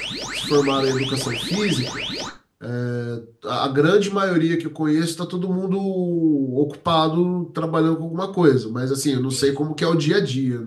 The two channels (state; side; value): identical; both; correlation 1.00